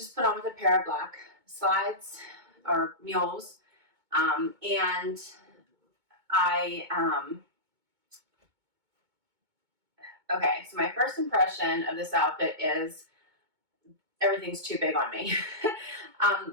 put on with a pair of black slides or mules. And okay, so my first impression of this outfit is everything's too big on me.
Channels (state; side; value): late; left; 2.2 ms